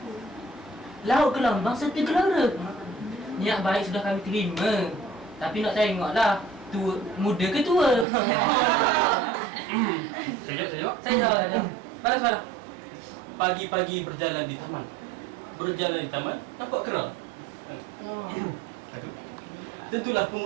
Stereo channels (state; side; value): drops out; left; at 8.1 s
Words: laut ke lambang serta gelara. Niat baik sudah kami terima, tapi nak tengoklah tua, muda ke tua. Saya Balas. Pagi-pagi berjalan di taman. Nampak kera. Tentulah